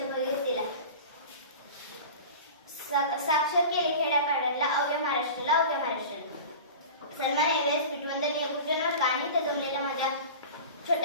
भगीरथीला. साक्षर केले खेड्यापाड्यातला अवघ्या महाराष्ट्राला अवघ्या महाराष्ट्राला. सन्मान एव्हरेस्ट पिटवंदनीय गुरुजनवर्ग आणि इथे जमलेल्या माझ्या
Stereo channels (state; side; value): inverted; both; correlation -0.35